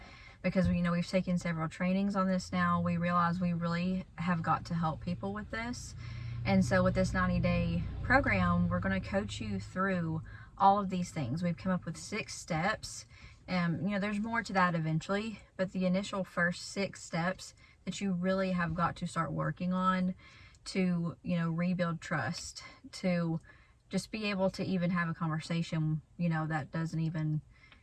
because we've taken several trainings on this now. We realize we really have got to help people with this. And so with this 90-day program, we're going to coach you through all of these things. We've come up with 6 steps. There's more to that eventually, but the initial first 6 steps that you really have got to start working on to, rebuild trust, to just be able to even have a conversation, that doesn't even,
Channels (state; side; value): identical; both; correlation 1.00